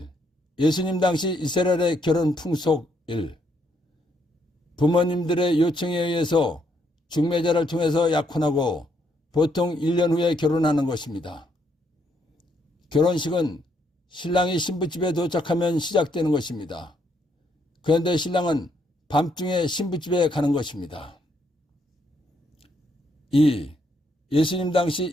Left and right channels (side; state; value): both; normal; correlation 0.73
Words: 예수님 당시 이스라엘의 결혼 풍속 1. 부모님들의 요청에 의해서 중매자를 통해서 약혼하고 보통 1년 후에 결혼하는 것입니다. 결혼식은 신랑이 신부집에 도착하면 시작되는 것입니다. 그런데 신랑은 밤중에 신부집에 가는 것입니다. 2. 예수님 당시